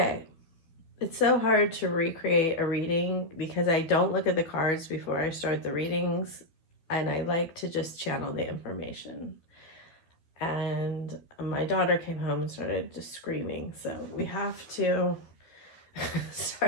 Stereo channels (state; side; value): late; right; 12 ms